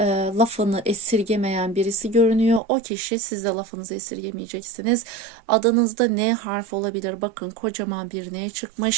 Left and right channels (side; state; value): left; drops out; at 2.6 s